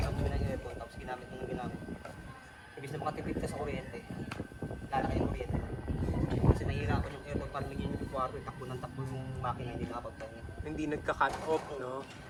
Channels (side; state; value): both; identical; correlation 1.00